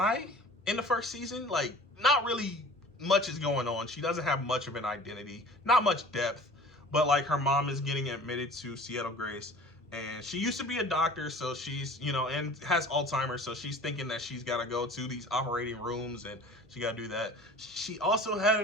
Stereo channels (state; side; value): normal; both; correlation 0.44